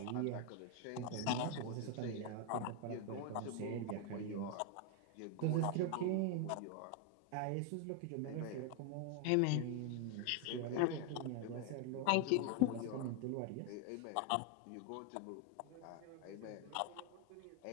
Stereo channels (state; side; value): different; both; correlation 0.01